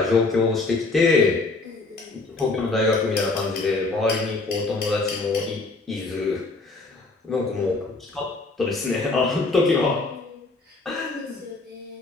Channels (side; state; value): right; quieter; 3.5 dB